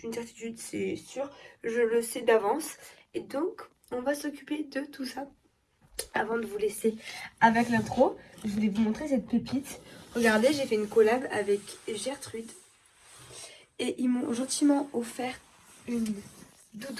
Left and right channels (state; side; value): identical; both; correlation 1.00